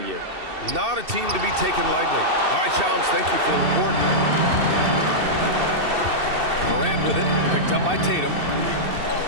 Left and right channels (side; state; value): left; late; 2.7 ms